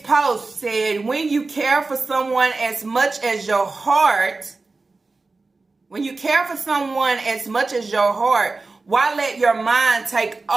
post said, when you care for someone as much as your heart, why let your mind take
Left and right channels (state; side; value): quieter; left; 3.7 dB